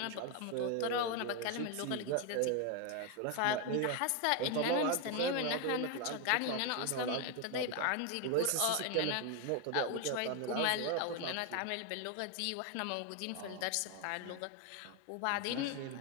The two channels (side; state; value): both; different; correlation 0.01